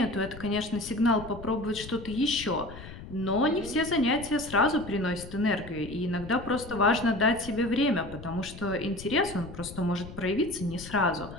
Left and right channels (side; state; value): left; noise; rumble, 14 dB below the sound